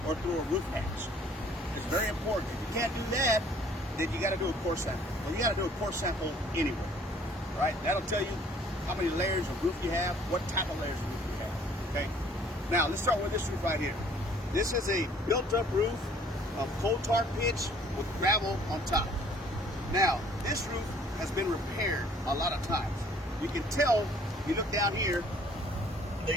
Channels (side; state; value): both; normal; correlation 0.57